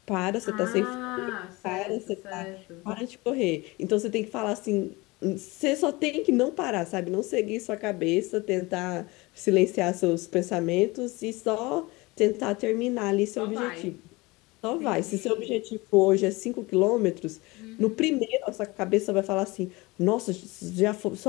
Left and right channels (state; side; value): quieter; right; 23.2 dB